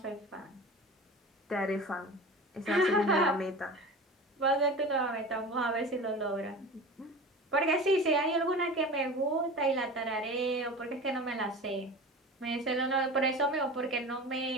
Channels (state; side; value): normal; both; correlation 0.34